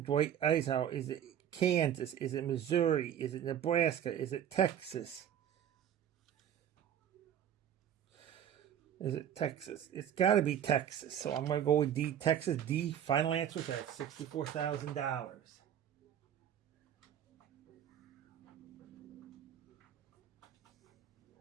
Dwight Eisenhower? Is it Kansas? Is it Missouri? Is it Nebraska? Is it Texas? Is it Texas? It's got to be Texas. So I'm going to go with D, Texas. D, final answer. That's $64,000.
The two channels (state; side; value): quieter; left; 9.8 dB